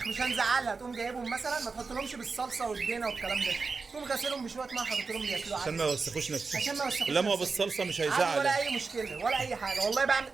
مش هنزعلها، تقوم جايبهم مثلا ما تحطلهمش بالصلصه والدينه والكلام ده، تقوم غاسلهم بشويه ميه حاطط لهم ياكلوا عشان ما يوسخوش نفسهم. عشان ما يوسخوش لما هو نفسهم. بالصلصه مش ولا هيزعل. اي مشكله ولا اي حاجه، والله بعمل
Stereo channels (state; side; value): quieter; left; 4.5 dB